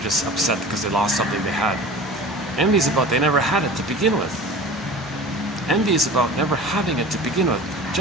just upset because they lost something they had. Envy is about they never had it to begin with. Envy is about never having it to begin with.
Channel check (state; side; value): normal; both; correlation 0.38